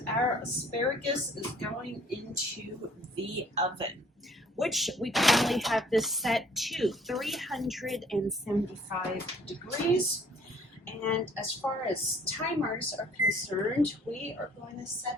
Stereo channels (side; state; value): both; normal; correlation 0.57